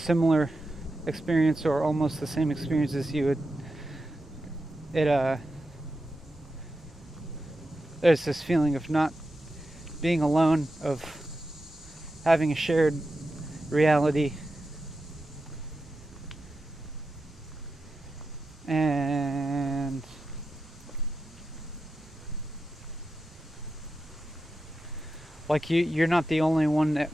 experience or almost the same experience as you, there's this feeling of not being alone, of having a shared reality. And like you're not the only one that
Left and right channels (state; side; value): normal; both; correlation 0.90